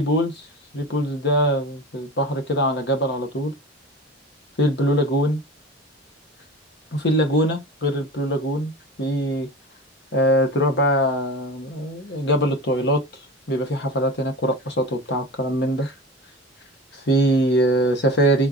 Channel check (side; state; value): both; normal; correlation 0.33